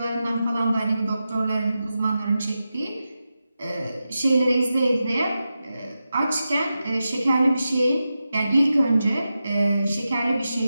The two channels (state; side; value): inverted; both; correlation -0.91